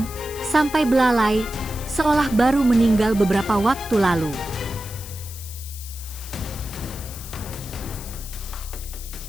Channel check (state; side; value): noise; left; hiss, 13 dB below the sound